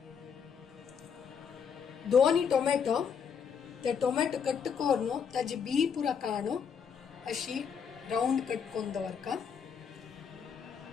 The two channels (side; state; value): right; quieter; 6.9 dB